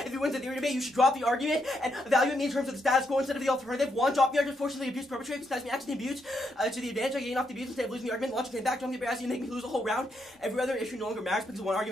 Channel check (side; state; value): both; normal; correlation 0.79